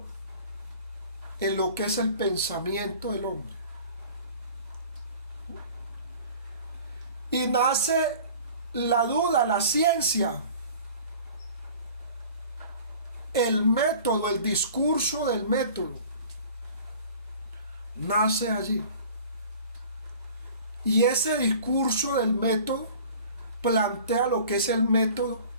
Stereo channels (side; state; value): both; inverted; correlation -0.45